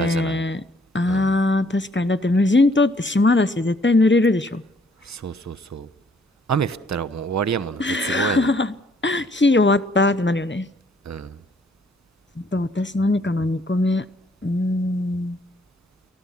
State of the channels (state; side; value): normal; both; correlation 0.64